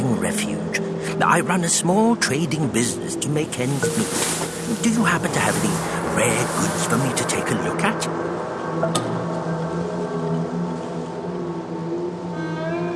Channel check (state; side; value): identical; both; correlation 1.00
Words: refuge. I run a small trading business to make ends meet. Do you happen to have any rare goods for me to take a look at?